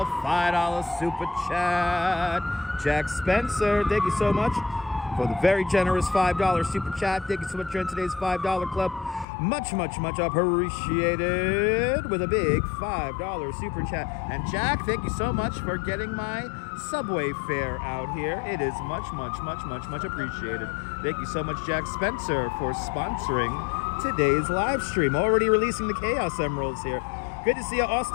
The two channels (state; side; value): drops out; right; at 9.2 s